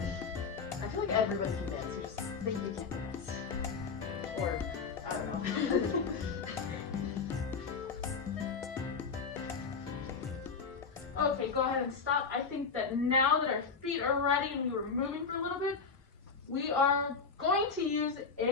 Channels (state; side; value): quieter; right; 5.2 dB